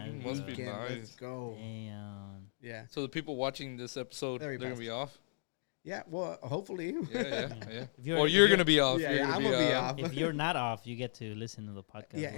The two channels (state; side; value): silent; right; digital silence